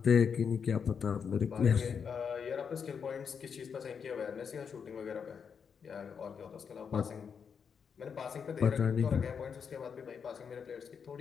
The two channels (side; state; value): right; quieter; 6.6 dB